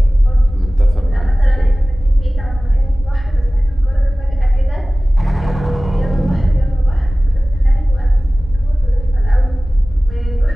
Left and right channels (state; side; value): normal; both; correlation 0.97